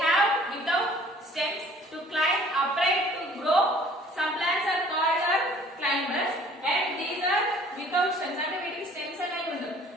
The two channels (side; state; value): both; normal; correlation 0.54